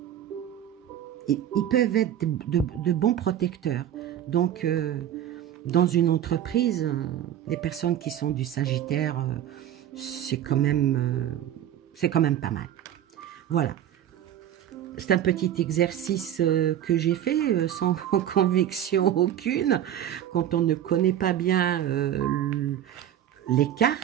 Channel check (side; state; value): left; quieter; 11.0 dB